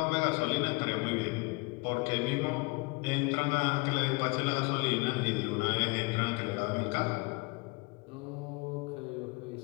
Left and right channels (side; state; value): right; quieter; 27.0 dB